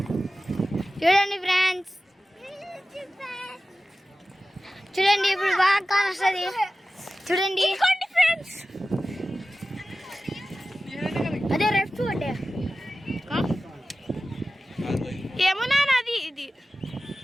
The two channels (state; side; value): normal; both; correlation 0.95